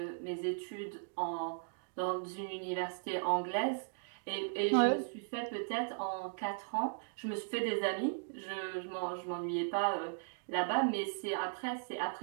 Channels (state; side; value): silent; left; digital silence